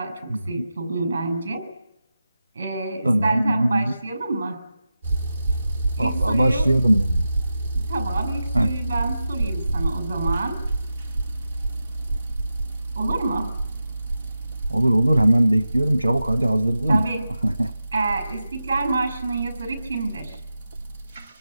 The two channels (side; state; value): both; inverted; correlation -0.92